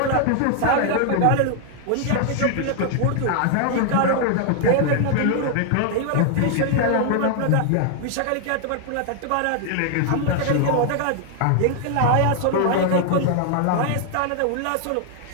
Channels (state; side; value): different; both; correlation 0.00